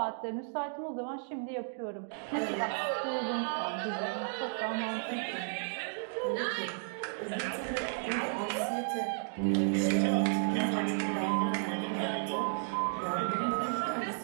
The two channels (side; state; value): left; silent; digital silence